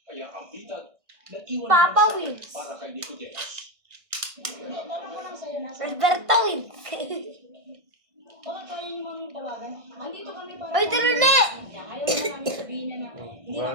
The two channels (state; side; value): late; left; 1.6 ms